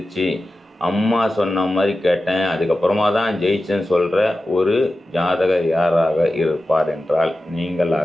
அம்மா சொன்ன மாதிரி கேட்டேன், அதுக்கப்புறமா தான் ஜெயிச்சேன்னு சொல்கிற ஒரு ஜாதகர் யாராக இருப்பார் என்றால்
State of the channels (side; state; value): both; normal; correlation 0.93